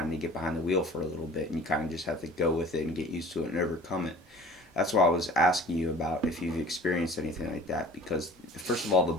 of to get behind the wheel for a little bit, and you kind of just have to go with it and get used to it and overcome it. That's why I was asking you about if you've experienced anything like that. Because first of all, the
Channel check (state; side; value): normal; both; correlation 0.45